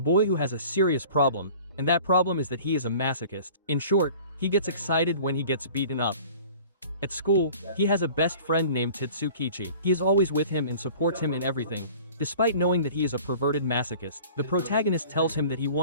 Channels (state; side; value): inverted; both; correlation -0.46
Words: who has a serious problem, and that problem is that he is a masochist. In short, he gets excited when he gets beaten up. At school, he has a best friend named Tsukichi. He is always with him and supports him in everything. Despite knowing that he is a perverted masochist, the protagonist tells him that he